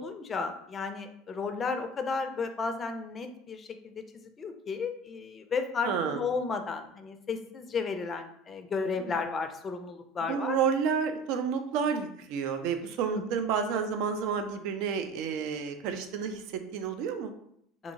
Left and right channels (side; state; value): both; normal; correlation 0.38